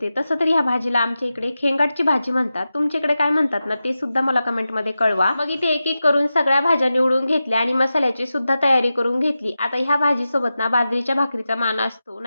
तसं तर ह्या भाजीला आमच्या इकडे खेंगाटची भाजी म्हणतात. तुमच्याकडे काय म्हणतात ना ते सुद्धा मला कमेंटमध्ये कळवा. मग इथे एक एक करून सगळ्या भाज्या निवडून घेतल्या आणि मसाल्याची सुद्धा तयारी करून घेतली. आता ह्या भाजीसोबत ना बाजरीच्या भाकरीचा मान असतो,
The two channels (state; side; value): inverted; both; correlation -0.92